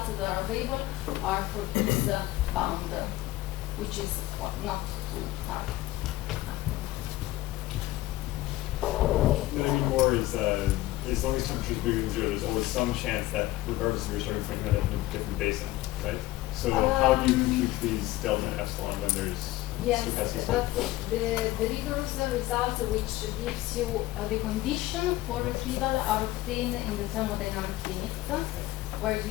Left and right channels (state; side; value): quieter; right; 16.9 dB